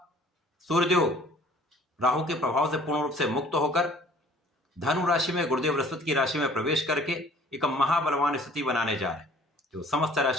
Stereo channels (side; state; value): both; normal; correlation 0.53